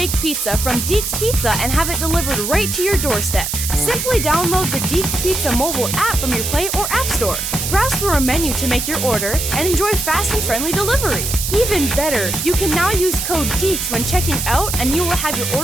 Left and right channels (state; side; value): noise; right; hiss, 3 dB below the sound